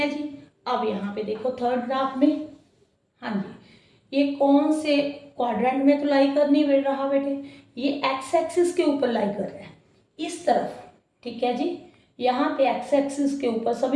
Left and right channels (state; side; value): identical; both; correlation 1.00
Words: जी। अब यहाँ पे देखो थर्ड ग्राफ में, हाँ जी, ये कौन से क्वाड्रेंट में तो लाई कर नहीं रहा बेटे? ये एक्स एक्सिस के ऊपर लाई कर रहा है, इस तरफ, ठीक है जी। यहाँ पे एक्स एक्सिस के ऊपर